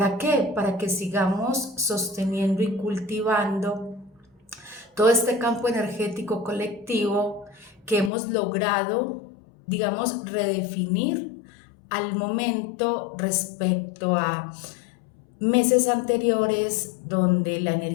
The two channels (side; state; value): right; drops out; at 8.1 s